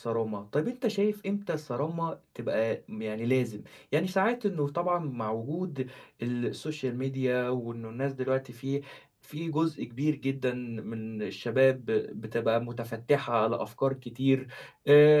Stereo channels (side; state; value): both; identical; correlation 1.00